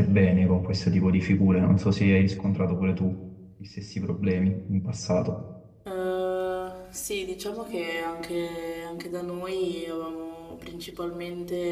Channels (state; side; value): identical; both; correlation 1.00